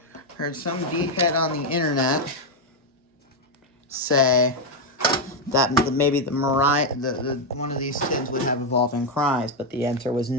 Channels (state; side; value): normal; both; correlation 0.03